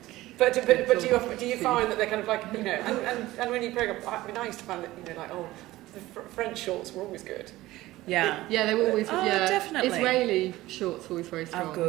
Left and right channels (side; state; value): left; quieter; 17.2 dB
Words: But do you find that they're kind of like, you know, and when you program, I mean, I used to find that, you know, like, the French shorts were always good. Yeah. Yeah, they were always definitely. Israeli shorts were always very strong. Oh,